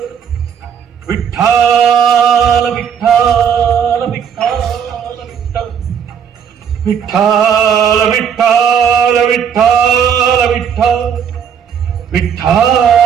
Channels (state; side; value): quieter; left; 7.9 dB